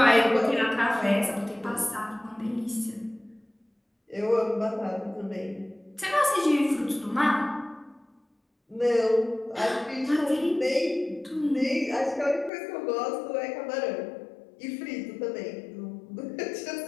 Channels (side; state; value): right; drops out; at 12.5 s